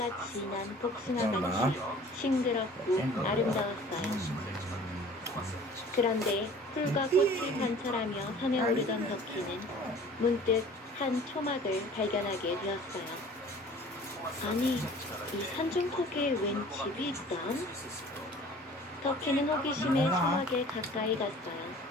진한 복숭아같이 싱그럽고 아름다웠어요. 그런데 풀과 꽃을 관찰하며 산에 오르던 덕희는 문득 한 초막을 발견하게 되었어요. 아니, 이 산중턱에 웬 집이 있담? 덕희는 호기심에 초막에 가까이 갔어요.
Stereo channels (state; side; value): normal; both; correlation 0.47